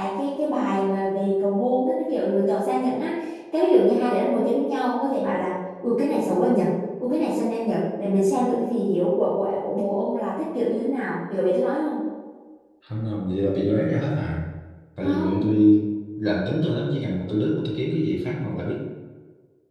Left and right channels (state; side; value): identical; both; correlation 1.00